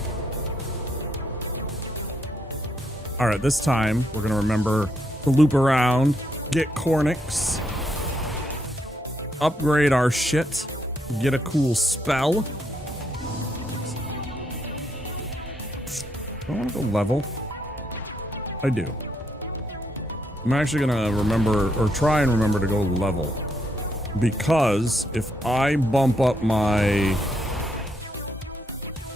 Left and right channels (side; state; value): both; normal; correlation 0.76